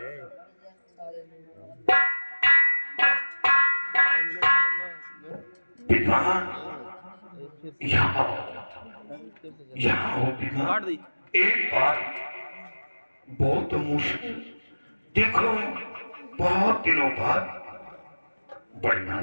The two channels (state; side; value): inverted; both; correlation -1.00